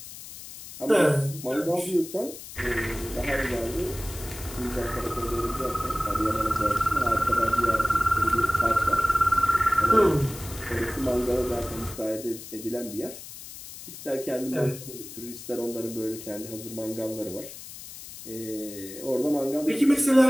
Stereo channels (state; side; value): noise; left; hiss, 14 dB below the sound